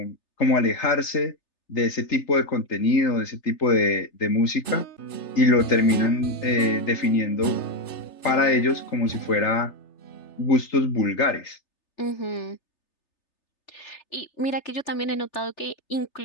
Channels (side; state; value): right; late; 3.3 ms